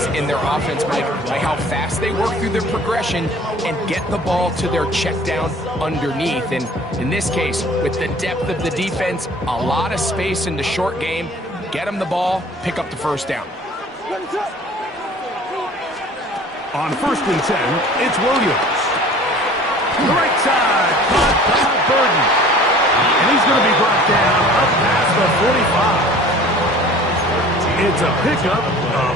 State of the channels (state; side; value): normal; both; correlation 0.47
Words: in their offense, Mike, by how fast they work through their progression and get the ball to their check down underneath. And in this case, with the depth of the defense, a lot of space in the short game, get them the ball, pick up the first down. On 1st and 10, it's Williams. The right side, caught by Burden. And he's going to be brought down up past the 45. It's a pickup of